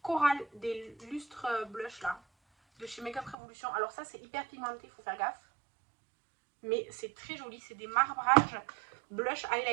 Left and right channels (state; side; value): drops out; left; at 3.4 s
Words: Coral des lustres blush là, de chez Makeup Revolution. Alors ça, c'est hyper pigmenté, il faut faire gaffe. Mais c'est très joli, c'est des marbrages blush